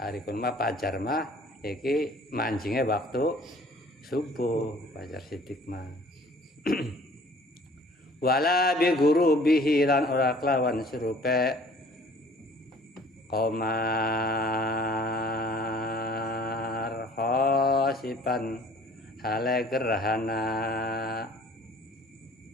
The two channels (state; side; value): normal; both; correlation 0.53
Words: kun mah fajar mah iki manjinge waktu subuh fajar sidik mah wala bi gurubihi lan ora kelawan surupe qamar khosipan hale gerhana